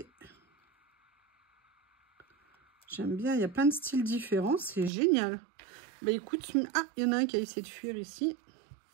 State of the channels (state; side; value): drops out; left; at 4.9 s